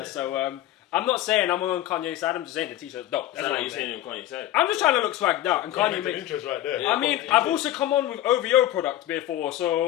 I'm not saying I'm on Kanye's side. I'm just saying the t-shirt's dope. That's what you're saying on Kanye's side. I'm just trying to look swagged out, and Kanye makes interest right there. Yeah, I mean, I've also come on with OVO product before,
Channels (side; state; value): right; quieter; 13.7 dB